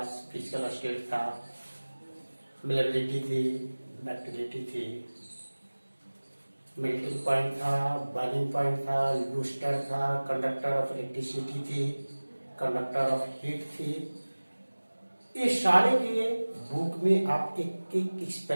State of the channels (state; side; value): inverted; both; correlation -1.00